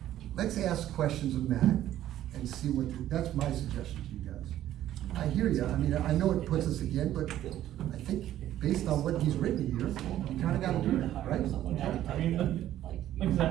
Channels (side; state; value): left; quieter; 12.6 dB